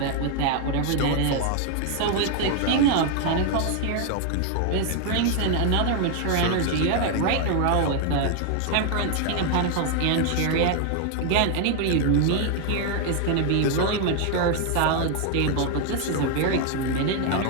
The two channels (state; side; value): different; both; correlation 0.00